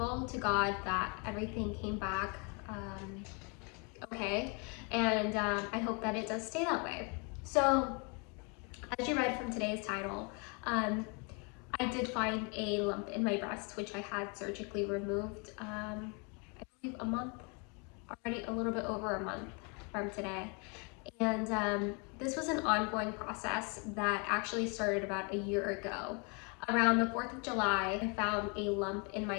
to God that everything came back okay, and I hope that it does stay that way. So, as you read from today's title, um, I did find a lump in my breast, which I had surgically removed, I believe a month, already a little bit over a month from today. And this was an ongoing process that actually started about a year ago. Around the 4th of July, I found a lump in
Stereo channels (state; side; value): quieter; right; 33.8 dB